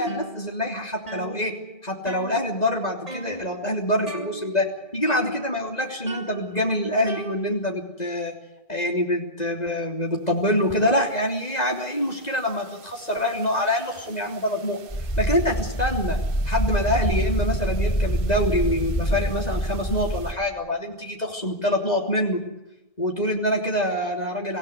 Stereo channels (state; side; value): late; right; 2.0 ms